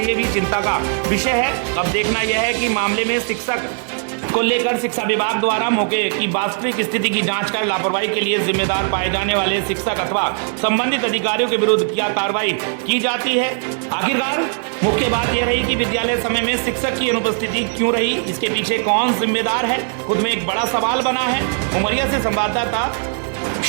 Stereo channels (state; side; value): silent; left; 55 dB below the other